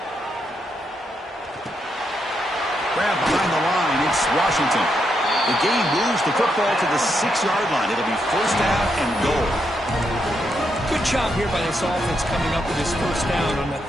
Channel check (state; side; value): normal; both; correlation 0.80